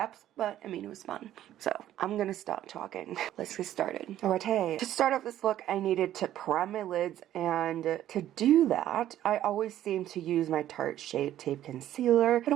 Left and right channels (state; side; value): quieter; left; 12.4 dB